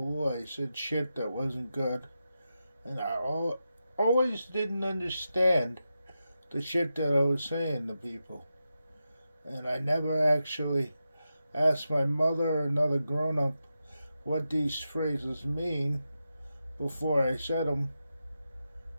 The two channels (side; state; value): both; inverted; correlation -0.89